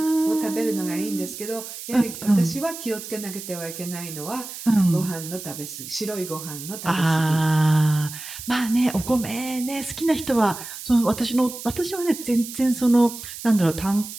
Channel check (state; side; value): noise; right; hiss, 11 dB below the sound